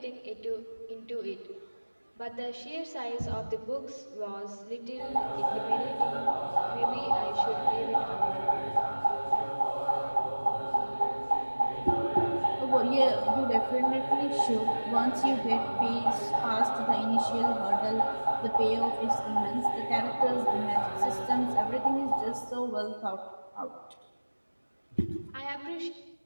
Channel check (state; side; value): inverted; both; correlation -1.00